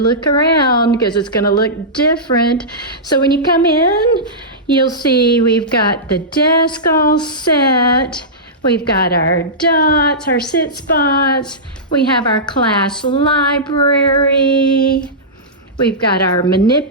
around because it's gonna look different. So when you come in, you'll see we've got the desk all set. We've got our dots, our sit spots. We have our class library. We've got our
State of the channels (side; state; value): both; normal; correlation -0.15